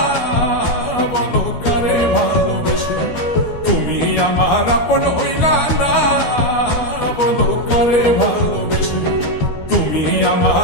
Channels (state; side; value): late; right; 12 ms